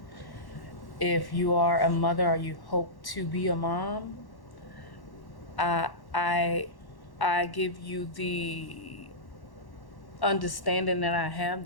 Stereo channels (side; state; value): right; late; 1.1 ms